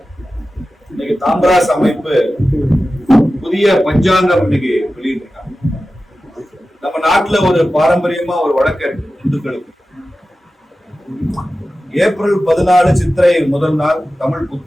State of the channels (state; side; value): normal; both; correlation 0.94